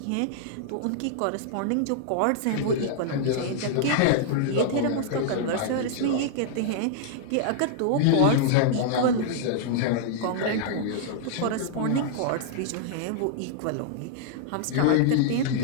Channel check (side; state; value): both; different; correlation -0.01